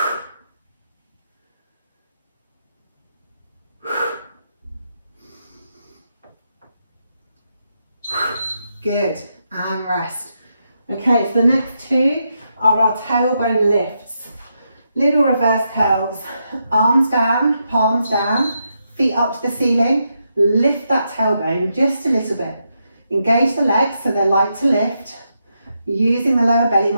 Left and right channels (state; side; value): inverted; both; correlation -0.83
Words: Good, and rest. Okay, so the next two are our tailbone lifts. Little reverse curls, arms down, palms down, feet up to the ceiling. Lift that tailbone just a little bit. Engage the legs so they're light to lift, using the lower belly